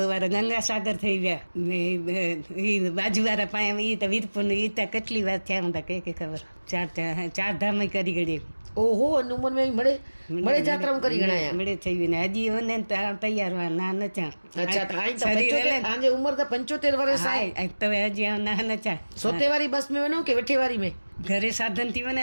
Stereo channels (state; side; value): inverted; both; correlation -1.00